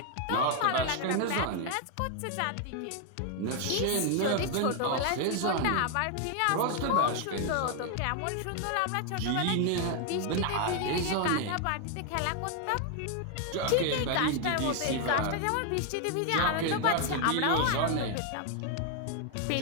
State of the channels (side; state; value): both; different; correlation 0.01